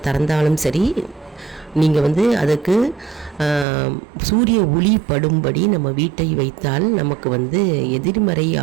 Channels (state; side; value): drops out; left; at 3.7 s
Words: திறந்தாலும் சரி, நீங்கள் அதுக்கு சூரிய ஒளி படும்படி நம்ம வீட்டை வைத்தால் நமக்கு எதிர்மறை